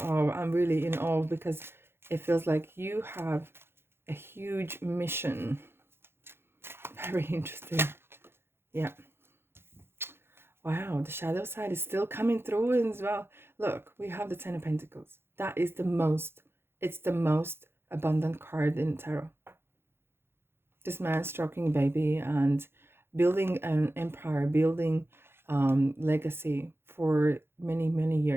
really in awe, because it feels like you have a huge mission. Very interesting. Yeah. Wow, the shadow side is still coming through as well. Look, we have the Ten of Pentacles. That is it's the most abundant card in tarot. This man stroking a baby and building an empire, building legacy for many, many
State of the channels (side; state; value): left; late; 0.11 ms